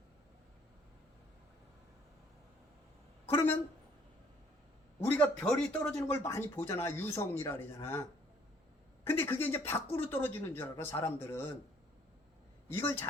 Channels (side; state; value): both; normal; correlation 0.61